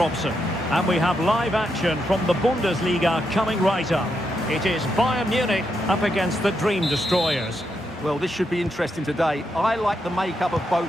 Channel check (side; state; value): both; normal; correlation 0.82